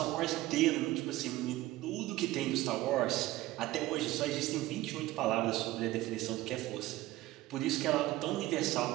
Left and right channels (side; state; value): left; quieter; 16.8 dB